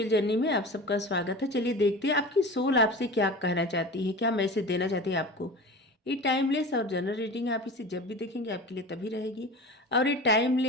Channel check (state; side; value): normal; both; correlation 0.34